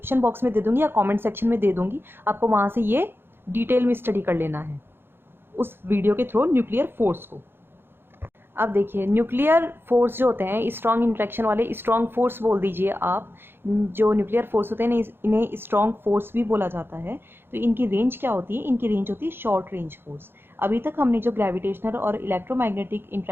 बॉक्स में दे दूंगी या कमेंट सेक्शन में दे दूंगी, आपको वहां से ये डिटेल में स्टडी कर लेना है उस वीडियो के थ्रू न्यूक्लियर फोर्स को। अब देखिए, न्यूक्लियर फोर्स जो होते हैं स्ट्रॉन्ग इंट्रैक्शन वाले, स्ट्रॉन्ग फोर्स बोल दीजिए आप। जो न्यूक्लियर फोर्स होते हैं इन्हें स्ट्रॉन्ग फोर्स भी बोला जाता है। तो इनकी रेंज क्या होती है? इनकी रेंज होती है शॉर्ट रेंज फोर्स। अभी तक हमने जो ग्रेविटेशनल और इलेक्ट्रोमैग्नेटिक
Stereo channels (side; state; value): left; late; 0.11 ms